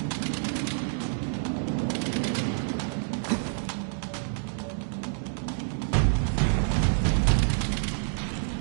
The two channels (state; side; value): silent; left; digital silence